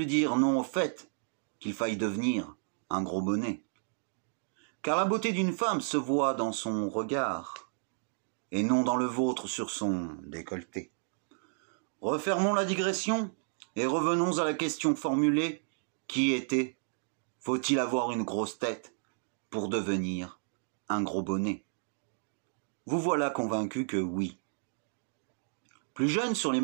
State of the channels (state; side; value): silent; left; digital silence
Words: dire non au fait qu'il faille devenir un gros bonnet. Car la beauté d'une femme se voit dans son regard, et non dans le vôtre sur son décolleté. Refermons la digression et revenons à la question formulée qui était « Faut-il avoir une grosse tête pour devenir un gros bonnet ?» Vous voilà convaincu que oui. Plus jeune sur les